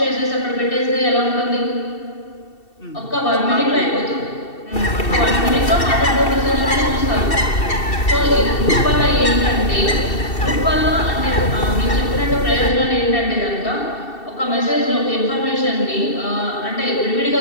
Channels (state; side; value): late; right; 2.7 ms